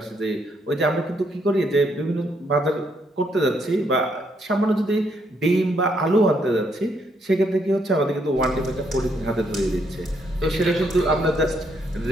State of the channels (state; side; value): normal; both; correlation 0.73